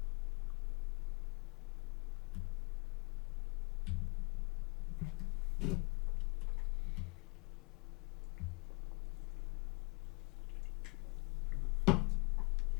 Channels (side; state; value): right; quieter; 28.1 dB